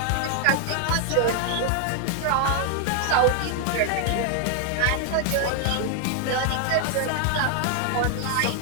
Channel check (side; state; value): both; different; correlation 0.00